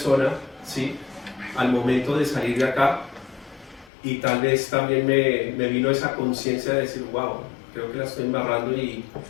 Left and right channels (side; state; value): right; drops out; at 3.9 s